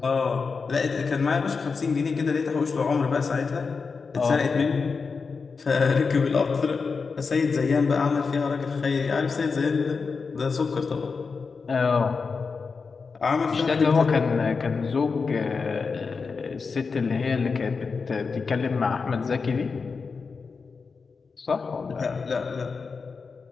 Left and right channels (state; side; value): quieter; right; 4.9 dB